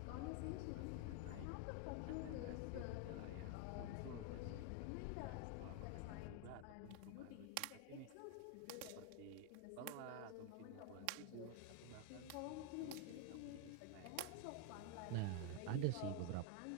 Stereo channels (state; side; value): different; both; correlation 0.01